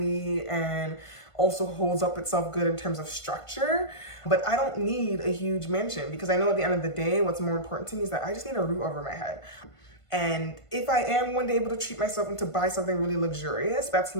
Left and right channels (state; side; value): late; right; 1.5 ms